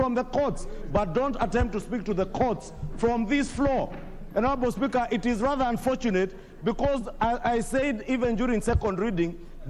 the courts, but don't attempt to speak to the courts from this floor. And Honorable Speaker, it is rather unfortunate because I said even during second reading,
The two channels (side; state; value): both; identical; correlation 1.00